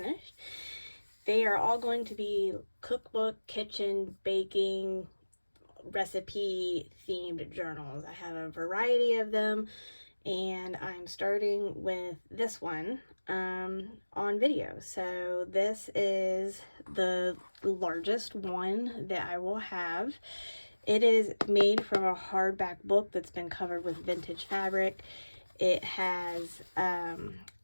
They are all going to be cookbook, kitchen, baking, recipe themed journals. I have a variety of them, and I'm starting with this one on video. So this is the largest one that I will have. It is made from a hardback book that's been covered with vintage fabric. It has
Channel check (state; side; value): inverted; both; correlation -1.00